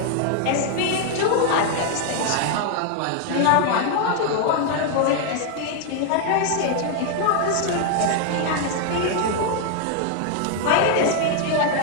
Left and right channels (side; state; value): both; different; correlation 0.00